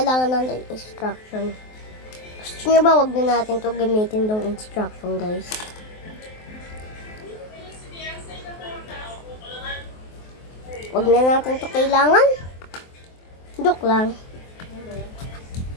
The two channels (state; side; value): late; right; 23 ms